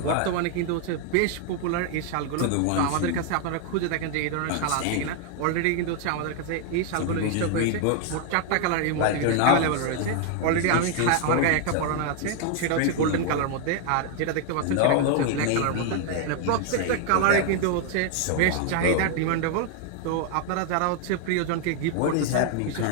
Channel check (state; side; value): different; both; correlation 0.00